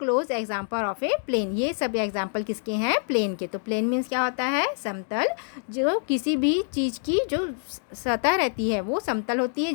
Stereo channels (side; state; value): right; silent; digital silence